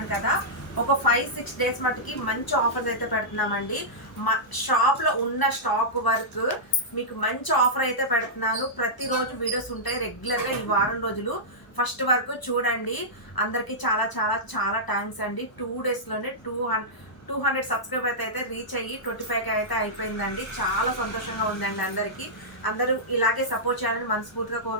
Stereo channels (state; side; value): late; right; 1.0 ms